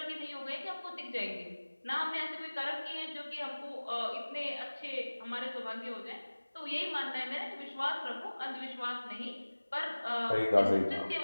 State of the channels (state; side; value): inverted; both; correlation -1.00